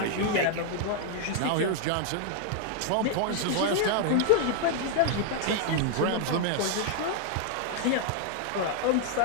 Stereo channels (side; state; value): both; different; correlation 0.00